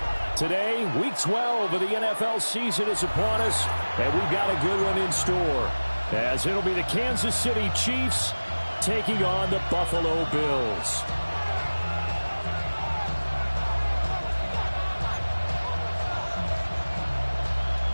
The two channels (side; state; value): both; inverted; correlation -1.00